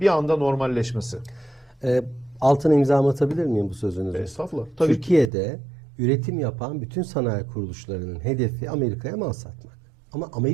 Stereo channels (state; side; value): drops out; left; at 5.3 s